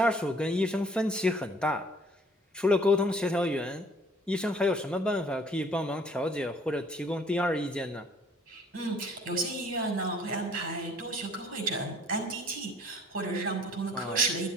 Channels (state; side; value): normal; both; correlation 0.56